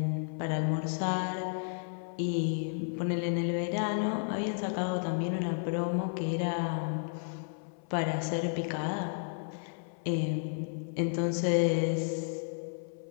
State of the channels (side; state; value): right; silent; 56 dB below the other